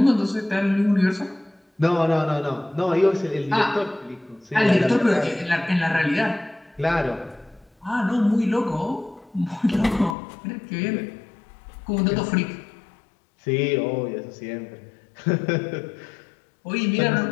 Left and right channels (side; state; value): right; drops out; at 10.2 s